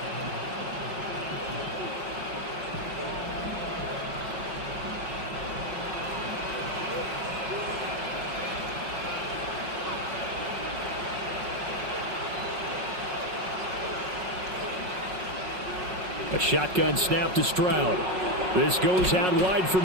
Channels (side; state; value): left; late; 5.4 ms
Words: A shotgun snap to Stroud. This goes out wide for